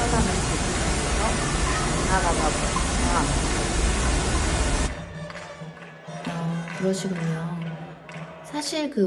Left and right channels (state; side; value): identical; both; correlation 1.00